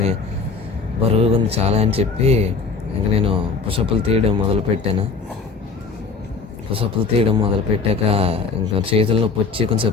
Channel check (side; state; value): right; quieter; 4.8 dB